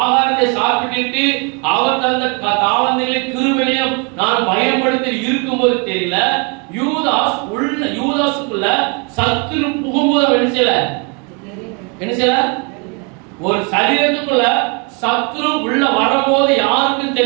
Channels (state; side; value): quieter; left; 32.7 dB